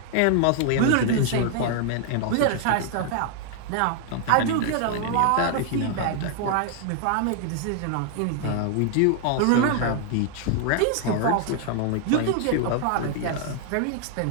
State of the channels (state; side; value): different; both; correlation 0.00